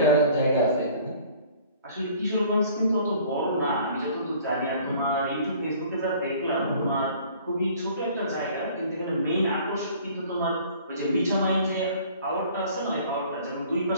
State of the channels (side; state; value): both; inverted; correlation -0.52